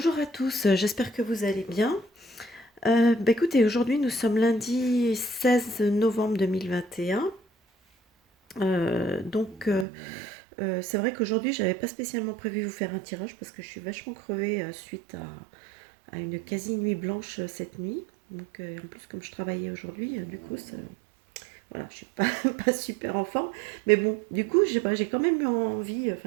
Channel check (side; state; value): left; drops out; at 9.9 s